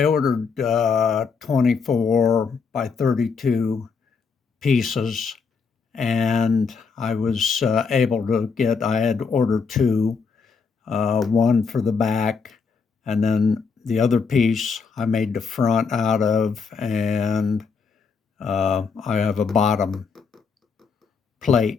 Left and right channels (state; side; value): quieter; right; 5.3 dB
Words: ordered 24 by 32 pieces, and I was able to get, I had ordered two, one for the back, and then the other piece I made the front out of, and I have a bottom